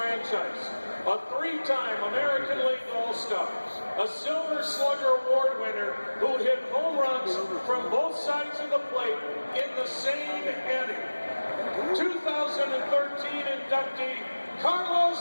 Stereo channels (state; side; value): inverted; both; correlation -1.00